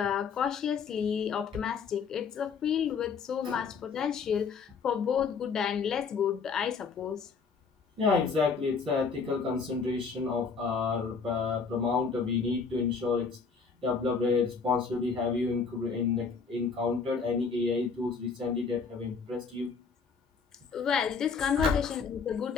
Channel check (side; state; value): right; quieter; 5.4 dB